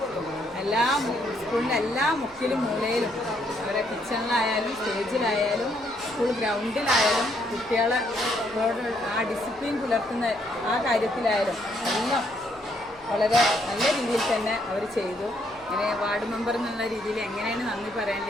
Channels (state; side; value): noise; right; hum, 27 dB below the sound